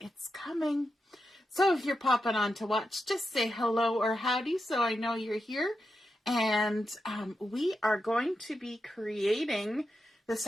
it's coming. So if you're popping on to watch, just say hello or howdy so I know you're here. And we are going to be creating this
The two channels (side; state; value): both; normal; correlation 0.87